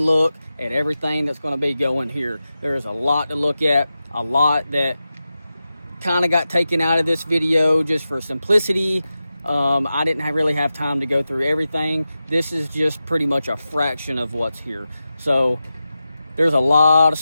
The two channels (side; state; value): both; inverted; correlation -0.92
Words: look at everything that's going to be going here. There's a lot to look at, a lot that kind of got taken out of this video just for simplicity. I didn't really have time to go through everything. This is just pretty much a fraction of what's here. So there's a lot of